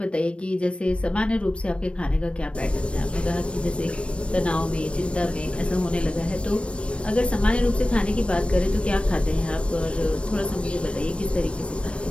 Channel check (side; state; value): right; late; 0.060 ms